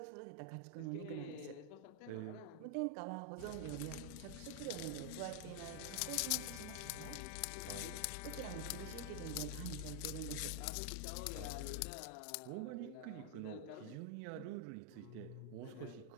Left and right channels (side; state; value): both; different; correlation 0.00